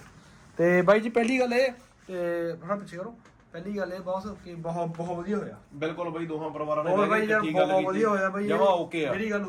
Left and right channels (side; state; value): both; identical; correlation 1.00